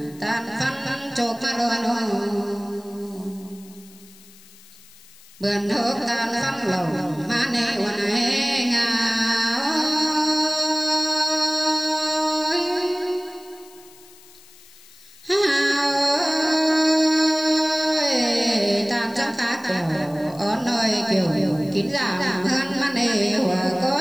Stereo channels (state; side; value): noise; left; hiss, 24 dB below the sound